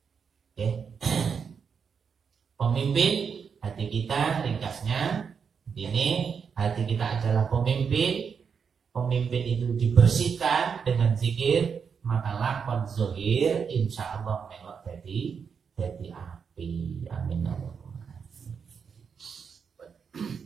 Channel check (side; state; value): left; quieter; 6.4 dB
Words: pemimpin hati kita, ringkasnya ini, hati kita adalah pemimpin. Pemimpin itu dibersihkan dengan zikir, maka lakon zohir insya Allah melok jadi api. Amin.